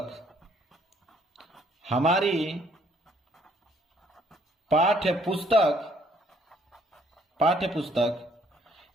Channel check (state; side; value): normal; both; correlation 0.65